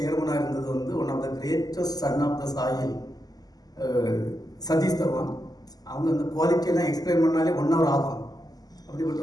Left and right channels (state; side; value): late; right; 0.18 ms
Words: இருந்தது வந்து one of the greatest son of the soil, Satish Dhawan. அவங்க அந்த குவாலிட்டியெல்லாம் எக்ஸ்பிளைன் பண்ணாலே 1 hour ஆகும். அப்படிப்பட்ட